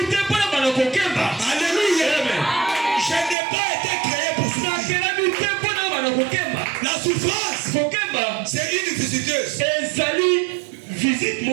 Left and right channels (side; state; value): left; drops out; at 3.4 s